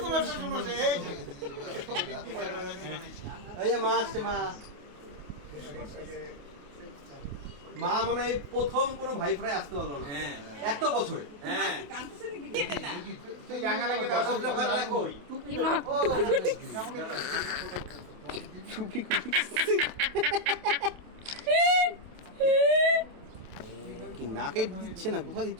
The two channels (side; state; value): left; late; 28 ms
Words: তোমার শ্বশুর মশাই এই যে এই যে মা আসছে মা। মা মনে হয় প্রথম কোনো ভাই ফোনে আসতে পারলো না এত বছরে। হ্যাঁ কই কি নাকে দিচ্ছে না, কোথায়